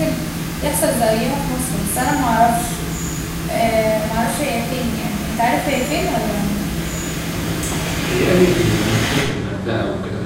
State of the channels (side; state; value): both; identical; correlation 1.00